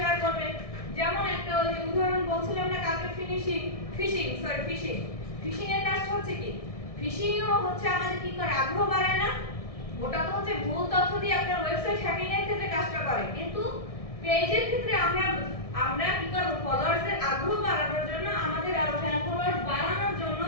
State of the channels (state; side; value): late; right; 1.6 ms